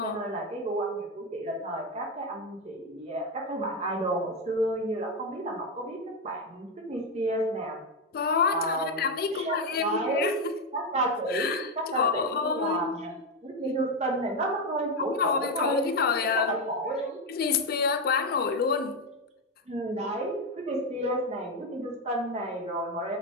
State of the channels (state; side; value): normal; both; correlation 0.09